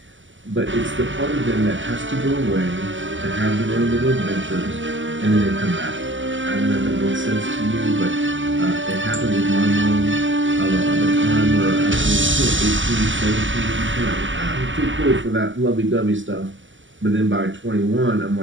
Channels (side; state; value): left; late; 0.55 ms